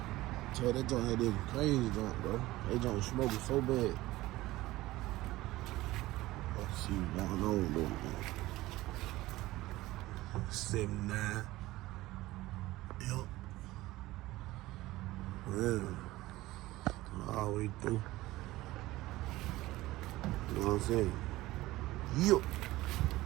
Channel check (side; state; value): left; quieter; 17.7 dB